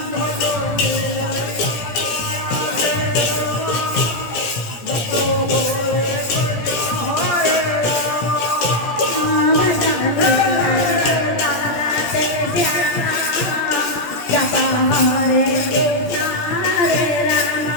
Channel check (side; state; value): right; late; 17 ms